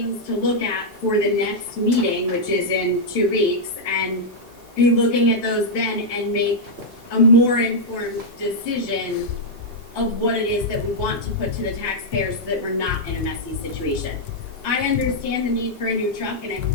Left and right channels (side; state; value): both; normal; correlation -0.04